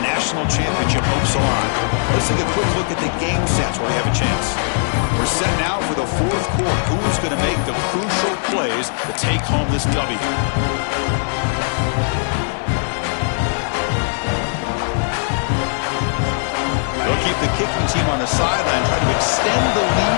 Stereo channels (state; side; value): silent; right; digital silence